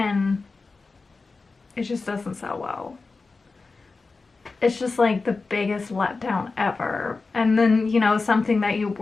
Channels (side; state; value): right; quieter; 4.0 dB